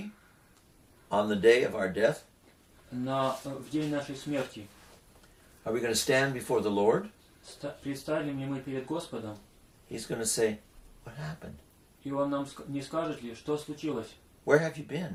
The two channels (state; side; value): identical; both; correlation 1.00